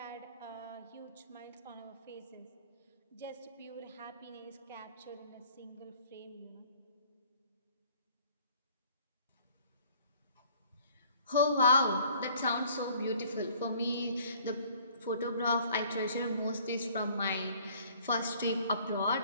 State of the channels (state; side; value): inverted; both; correlation -0.56